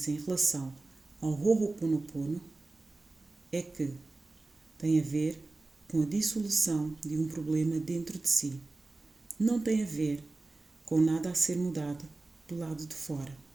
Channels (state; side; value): quieter; left; 3.2 dB